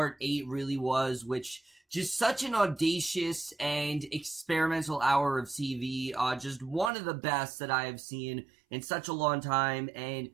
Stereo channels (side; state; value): left; drops out; at 6.9 s